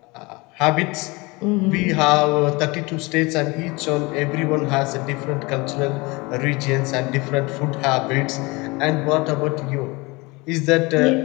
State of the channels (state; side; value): quieter; right; 24.9 dB